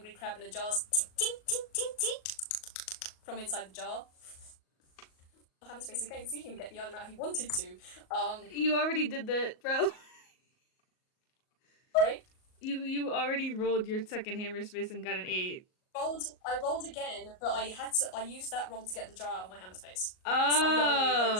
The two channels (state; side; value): late; right; 38 ms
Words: crab in a jar, ting ting ting ting ting from inside the jar. Hammer space again because he didn't even get the item out he wanted to. You already did that, bro. Sorry. You already rolled your second hammer space and got an 8. I rolled again, but I used that roll to get the jar out of my hammer space. So I'm rolling again